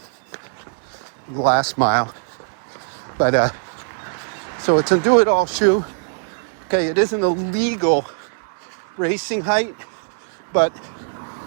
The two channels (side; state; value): left; silent; digital silence